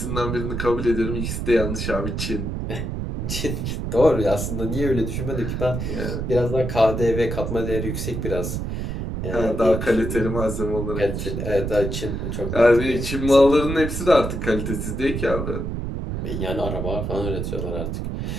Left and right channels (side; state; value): right; noise; rumble, 3 dB below the sound